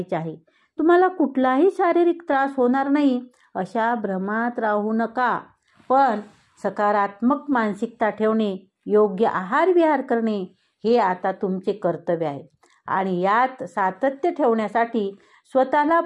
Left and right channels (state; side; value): identical; both; correlation 1.00